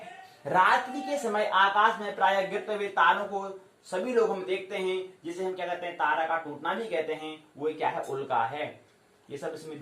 रात्रि के समय आकाश में प्रायः गिरते हुए तारों को सभी लोग हम देखते हैं, जिसे हम क्या कहते हैं, तारा का टूटना भी कहते हैं। वो क्या है? उल्का है। ये सब इसमें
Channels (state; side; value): identical; both; correlation 1.00